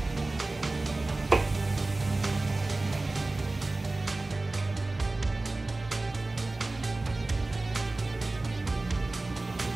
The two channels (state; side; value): quieter; left; 3.1 dB